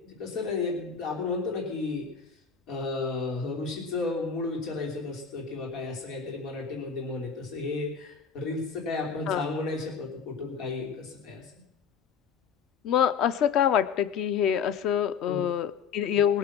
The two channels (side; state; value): right; quieter; 6.5 dB